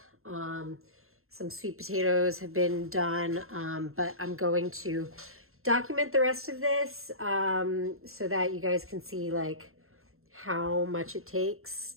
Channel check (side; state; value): left; late; 0.62 ms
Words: some sweet potatoes have been done, but I'm going to document the rest of this so that you guys can see like how much it takes